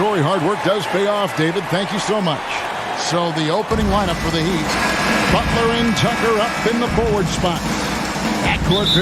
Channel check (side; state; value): both; identical; correlation 1.00